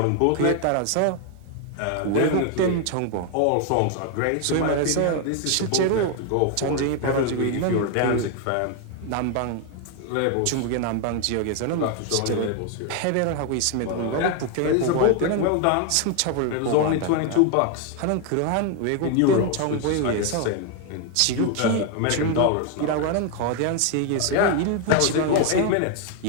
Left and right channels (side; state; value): both; different; correlation 0.01